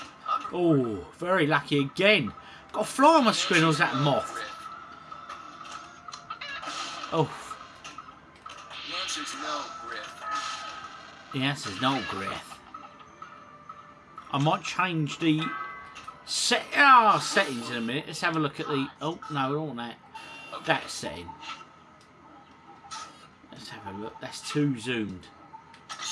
Oh, very lucky again. Got a fly on my screen, or was that a moth? Oh. The answer's no, Griff. The answer's no, Griff. I might change the settings in a minute. Let's have a look at the... Oh, no, we don't want that. That setting. Let's have a look. That's too zoomed.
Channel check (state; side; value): identical; both; correlation 1.00